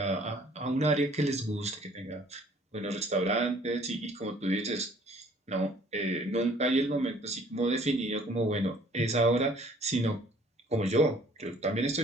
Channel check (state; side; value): normal; both; correlation 0.57